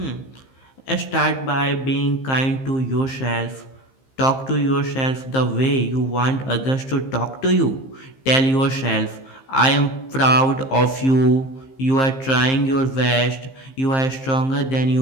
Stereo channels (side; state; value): right; late; 15 ms